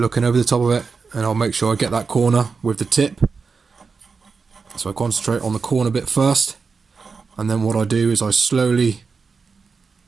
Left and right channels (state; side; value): quieter; left; 5.0 dB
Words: over the top of it, and I'll make sure I get that corner with the tip. So I concentrate on the corner bit first, and then what I do is I slowly